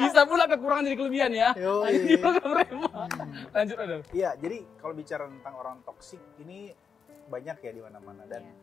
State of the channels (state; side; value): quieter; right; 6.3 dB